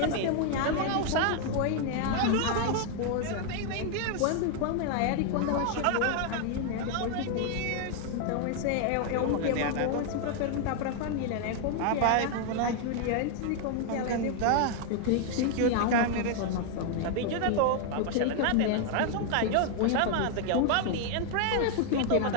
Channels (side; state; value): both; different; correlation 0.00